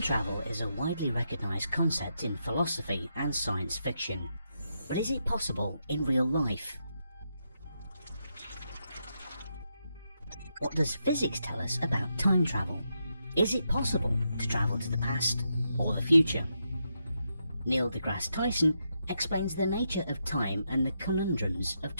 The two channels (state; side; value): inverted; both; correlation -0.82